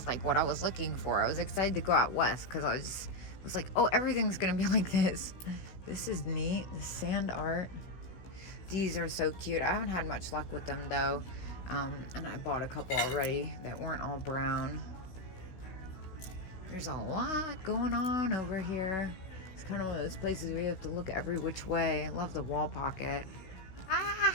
like what I was looking for. I was excited to go out west because I was like, oh, everything's gonna be like this. This is neat. The sand art. These are so cute. I haven't had much luck with them though. And I bought a couple already that weren't all brown. There's a lot going on over here. It's kind of one of those places where you have to look every which way. I love the wall pocket.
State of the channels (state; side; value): late; right; 16 ms